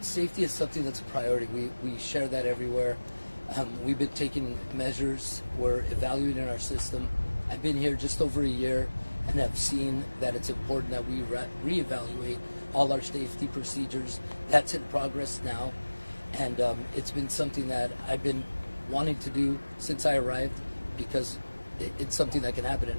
safety is something that's a priority. We share that everywhere. We've been taking measures. We're evaluating our system. I've been here just over a year and have seen that it's important that we reevaluate all our safety procedures. That's in progress now, and it's been something that I've been wanting to do since I arrived, because it's something that can happen at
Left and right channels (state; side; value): inverted; both; correlation -1.00